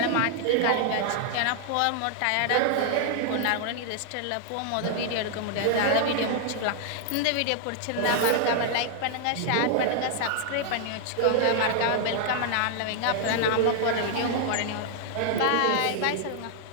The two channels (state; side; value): different; both; correlation 0.00